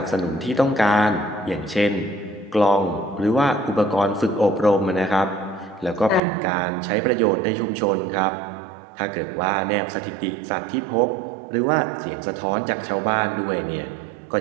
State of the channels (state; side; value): drops out; left; at 6.2 s